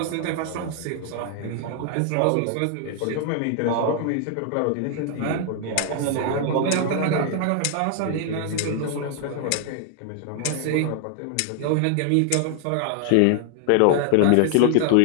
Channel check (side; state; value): both; different; correlation 0.00